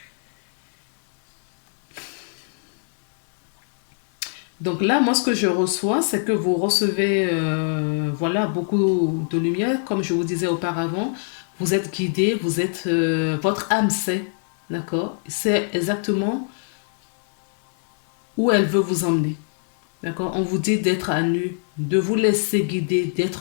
Donc là, moi, ce que je reçois, c'est que vous recevez, voilà, beaucoup de lumière. Comme je vous disais auparavant, vous êtes guidé, vous êtes, votre âme sait, d'accord? C'est exactement où elle veut vous emmener, d'accord? On vous dit d'être à nu, de vous laisser guider,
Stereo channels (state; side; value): silent; right; 61 dB below the other